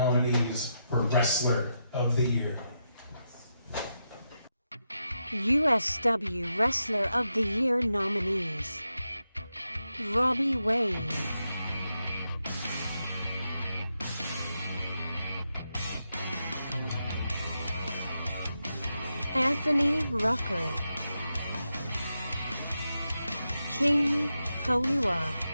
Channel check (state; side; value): inverted; both; correlation -0.85